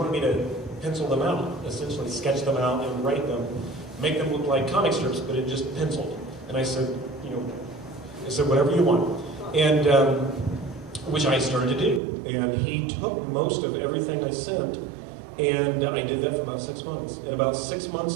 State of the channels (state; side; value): drops out; left; at 12.0 s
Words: me to pencil them out, essentially sketch them out and write them, make them look like comic strips, but it just penciled. And I said, whatever you want. And which I started to do. And he took most of everything I sent, and I did that for about 6 months. And about 6